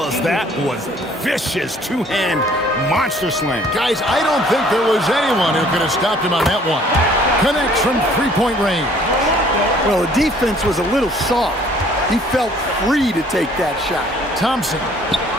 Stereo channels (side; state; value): both; normal; correlation 0.57